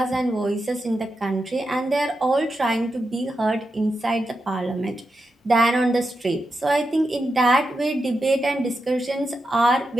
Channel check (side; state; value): both; normal; correlation 0.87